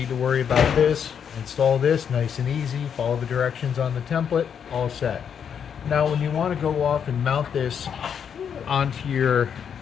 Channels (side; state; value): right; quieter; 7.7 dB